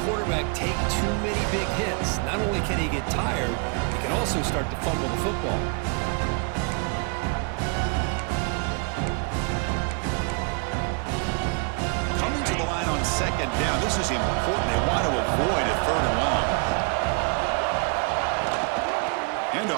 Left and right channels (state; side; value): quieter; left; 36.4 dB